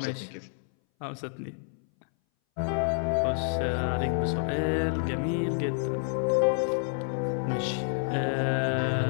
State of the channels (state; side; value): silent; right; 59 dB below the other